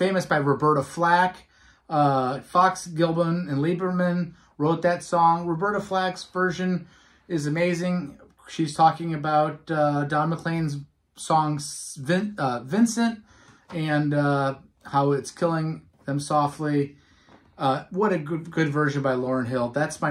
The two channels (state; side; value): identical; both; correlation 1.00